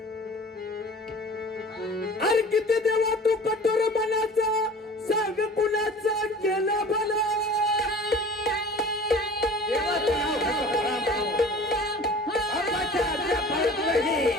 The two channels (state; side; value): normal; both; correlation 0.43